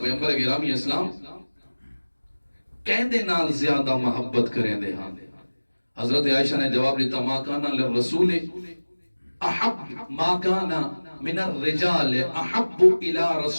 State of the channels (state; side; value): inverted; both; correlation -1.00